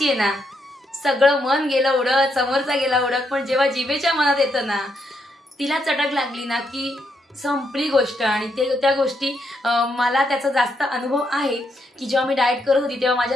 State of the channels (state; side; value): normal; both; correlation 0.78